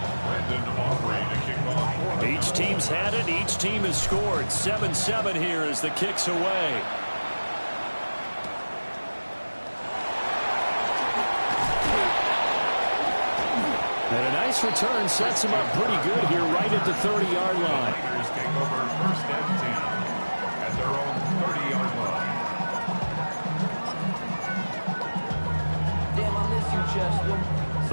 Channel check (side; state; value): both; inverted; correlation -1.00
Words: Brandon Aubrey to kick off. Each team's had it. Each team has scored. 7-7 here as the kick's away. And a nice return sets him up pretty good here right at the 30-yard line. Niners take over 1st and 10 at their own 30-yard line. Damn, I miss you, Chester.